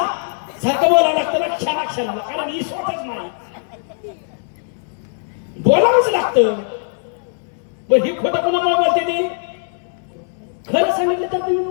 सारखं बोलावं लागतं ना क्षणाक्षणाला, कारण ही स्वतःच नाही बोलावंच लागतं. पण ही खोटं कुणामुळे बोलते ती? खरं सांगितलं तर तुम्ही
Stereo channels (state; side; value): silent; right; 63 dB below the other